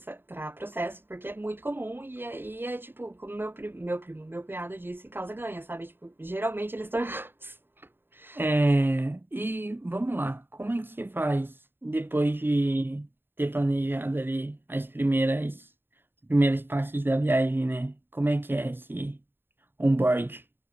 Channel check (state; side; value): late; left; 0.10 ms